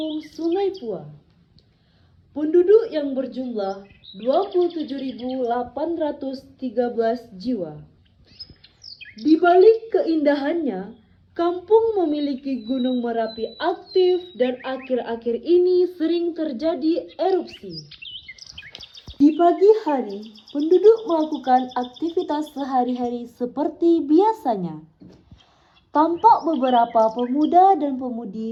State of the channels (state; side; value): identical; both; correlation 1.00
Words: Sungai Pua. Penduduk yang berjumlah 27.813 jiwa. Di balik keindahannya, kampung memiliki Gunung Merapi aktif dan akhir-akhir ini sering terjadi erupsi. Di pagi hari, penduduk melakukan aktivitas sehari-hari seperti biasanya. Tampak beberapa pemuda dan